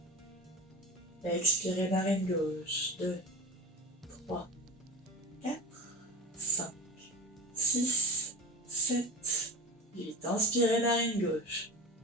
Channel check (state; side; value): normal; both; correlation 0.31